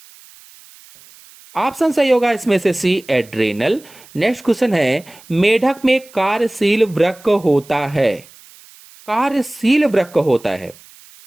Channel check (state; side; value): noise; right; hiss, 24 dB below the sound